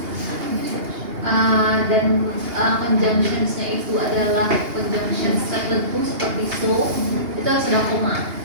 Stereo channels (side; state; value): left; late; 2.8 ms